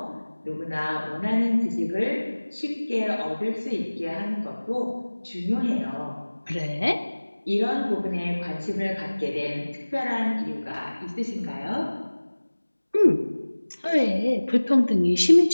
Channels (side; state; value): both; inverted; correlation -1.00